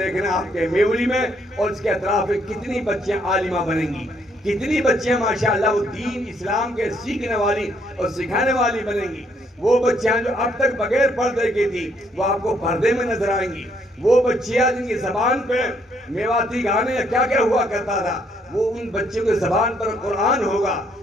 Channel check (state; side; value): normal; both; correlation 0.70